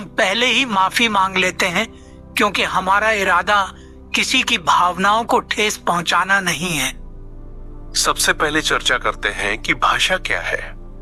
पहले ही माफी मांग लेते हैं, क्योंकि हमारा इरादा किसी की भावनाओं को ठेस पहुंचाना नहीं है। सबसे पहले चर्चा करते हैं कि भाषा क्या है।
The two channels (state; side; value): identical; both; correlation 1.00